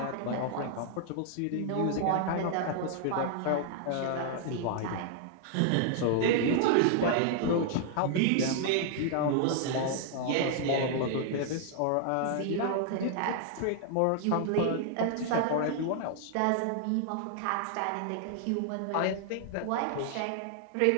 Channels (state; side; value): different; both; correlation 0.00